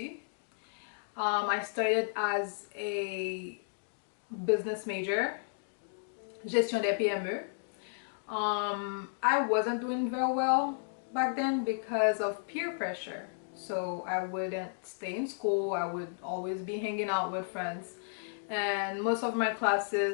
I started as a business major, gestion des PME. I wasn't doing very well back then because of peer pressure. So I wouldn't stay in school. I would always be hanging out with friends. And most of my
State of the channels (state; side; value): silent; right; digital silence